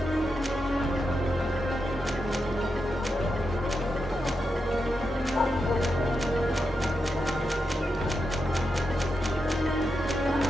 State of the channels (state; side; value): normal; both; correlation 0.86